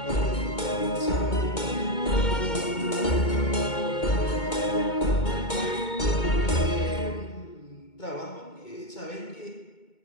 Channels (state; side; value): late; right; 2.2 ms